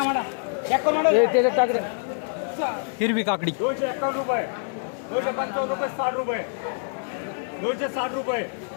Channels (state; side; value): silent; right; 61 dB below the other